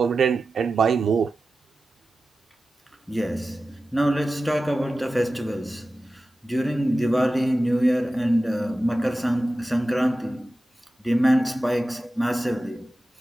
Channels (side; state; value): both; normal; correlation 0.94